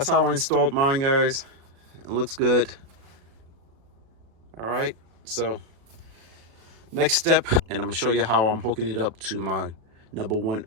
how I installed mine, guys. It looks good. All right, so next step, and I'm gonna show you how I'm hooking it up to my number one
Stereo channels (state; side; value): late; left; 36 ms